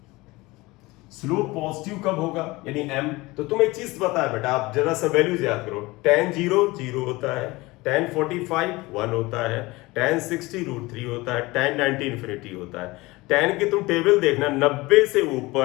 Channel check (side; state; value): right; quieter; 21.5 dB